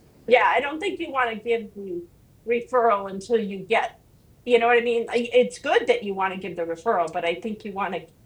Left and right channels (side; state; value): both; identical; correlation 1.00